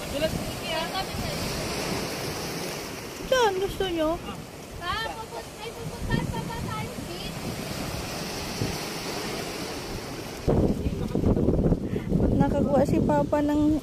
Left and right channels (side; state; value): both; identical; correlation 1.00